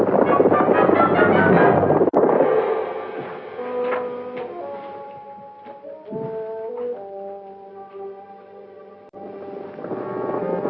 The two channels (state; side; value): identical; both; correlation 1.00